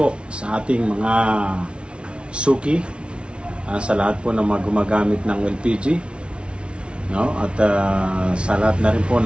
sa ating mga suki, sa lahat po ng mga gumagamit ng LPG, no? At sa lahat na rin po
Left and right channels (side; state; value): left; late; 0.058 ms